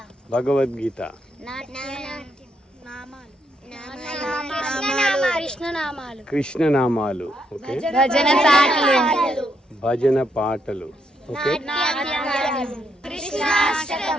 Bhagavad Gita. Krishna Namalu. Okay. Bhajana Patalu. Okay.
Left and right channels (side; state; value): both; normal; correlation 0.77